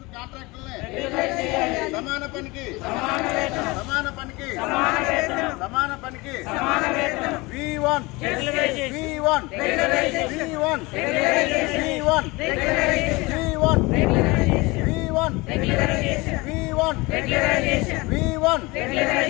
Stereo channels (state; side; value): quieter; right; 23.8 dB